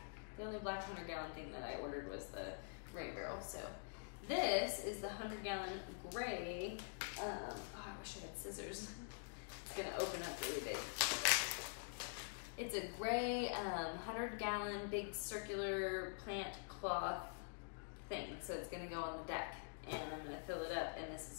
The only black 100-gallon thing that I ordered was the rain barrel, so. This is the 100-gallon gray. Oh, I wish I had scissors. It's gonna open up really big. It's a gray 100-gallon big circular plant cloth thing. So it's gonna go on the deck, and I'm gonna fill it up, and this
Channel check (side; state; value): right; silent; digital silence